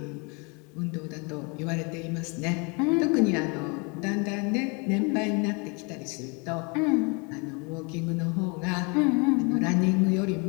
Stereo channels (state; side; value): quieter; right; 31.3 dB